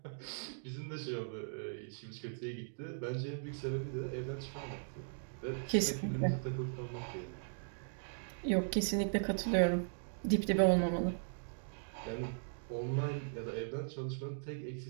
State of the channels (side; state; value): left; silent; digital silence